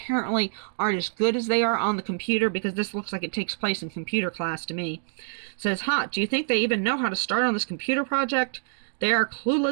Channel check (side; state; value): left; silent; digital silence